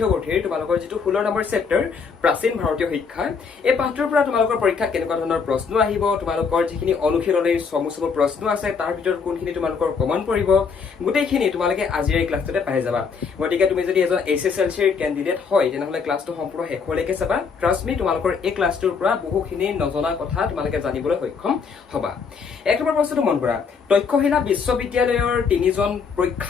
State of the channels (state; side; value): quieter; right; 5.6 dB